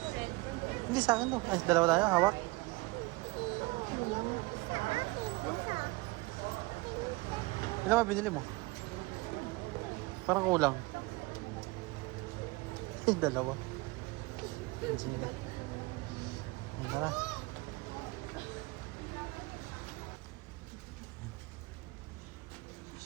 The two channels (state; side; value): quieter; left; 23.6 dB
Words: Hindi sa akin to. Ay, dalawa tayo, hawak. Ilan ba binili mo? Parang kulang. Ay, dalawa. Sige. Tara.